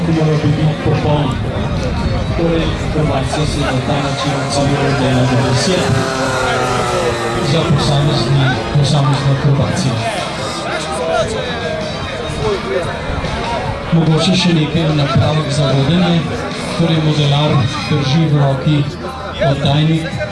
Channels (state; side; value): identical; both; correlation 1.00